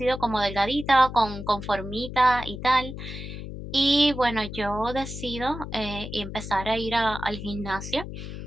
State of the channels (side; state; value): left; noise; hum, 9 dB below the sound